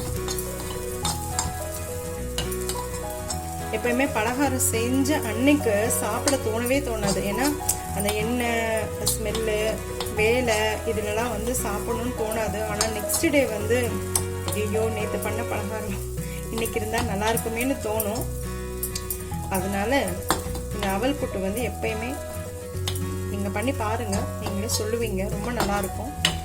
எப்பயுமே பலகாரம் செஞ்ச அன்னைக்கு சாப்பிட தோணவே தோணாது. ஏன்னா அந்த எண்ணெய் ஸ்மெல்லு வேலை இதுலலாம் வந்து சாப்பிடணும்னு தோணாது. ஆனால் நெக்ஸ்ட் டே வந்து ஐயோ நேற்று பண்ண பலகாரம் இன்னைக்கு இருந்தால் நல்லா இருக்குமேனு தோணும். அதனால இந்த அவல் புட்டு வந்து எப்பயுமே நீங்கள் பண்ணி பாருங்கள், நீங்களே சொல்லுவீங்க ரொம்ப நல்லாயிருக்கும்.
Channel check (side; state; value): both; identical; correlation 1.00